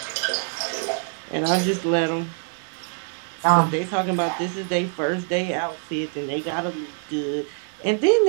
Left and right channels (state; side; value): silent; left; 61 dB below the other